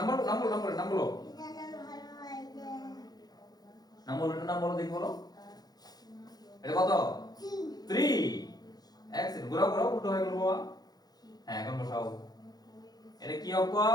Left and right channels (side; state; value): right; late; 0.19 ms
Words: বলো। এটার নাম হলো এই যে নাম বলো দেখি বলো। এটা কত? 3 3। এক্সেলেন্ট। ঘোরাও, উল্টো হয়ে গেল বাবা। হ্যাঁ এখন বসাও। এটা কি